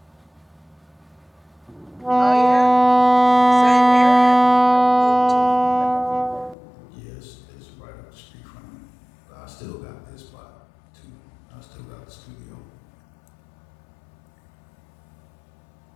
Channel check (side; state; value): right; drops out; at 6.6 s